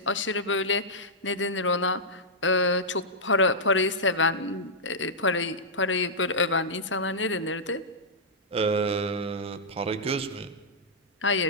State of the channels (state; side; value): normal; both; correlation -0.11